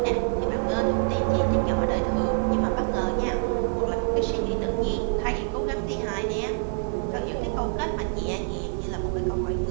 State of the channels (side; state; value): left; silent; 57 dB below the other